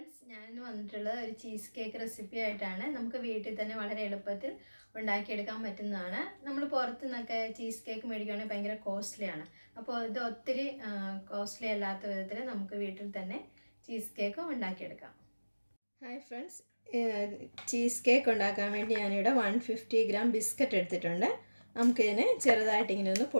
ഞാൻ വന്നിട്ടുള്ളത് ഒരു ചീസ് കേക്ക് റെസിപ്പി ആയിട്ടാണ്. നമുക്ക് വീട്ടിൽ തന്നെ വളരെ എളുപ്പത്തിൽ ഉണ്ടാക്കിയെടുക്കാൻ പറ്റുന്നതാണ്. നമ്മൾ പുറത്തു നിന്നൊക്കെ ചീസ് കേക്ക് മേടിക്കുകയാണെങ്കിൽ ഭയങ്കര കോസ്റ്റ്ലിയാണ്. അപ്പോൾ ഇത് ഒത്തിരി കോസ്റ്റ്ലി അല്ലാത്ത വിധത്തിൽ നമുക്ക് വീട്ടിൽ തന്നെ ചീസ് കേക്ക് ഉണ്ടാക്കിയെടുക്കാം. ഹായ് ഫ്രണ്ട്സ്, ചീസ് കേക്ക് ഉണ്ടാക്കാൻ വേണ്ടി ഞാനിവിടെ 150 ഗ്രാം ബിസ്ക്കറ്റ് എടുത്തിട്ടുണ്ട്. നമുക്കിതിനെ ചെറുതായിട്ട് ഇങ്ങനെ ഒന്ന്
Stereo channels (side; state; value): both; inverted; correlation -1.00